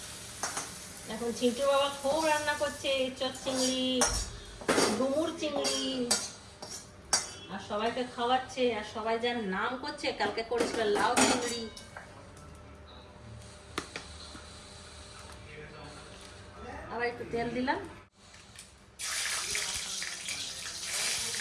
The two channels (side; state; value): both; identical; correlation 1.00